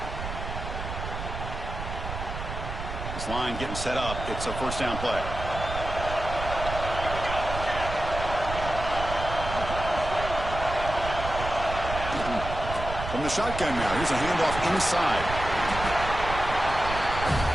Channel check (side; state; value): right; noise; rumble, 7 dB below the sound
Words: This line getting set up. It's a first down play. From the shotgun now, here's a handoff inside.